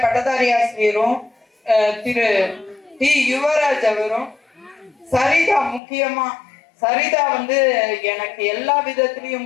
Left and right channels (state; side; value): drops out; right; at 5.8 s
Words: பட்டதாரி ஆசிரியரும் திரு டி யுவராஜ் அவரும், சரிதா முக்கியமா சரிதா எனக்கு எல்லா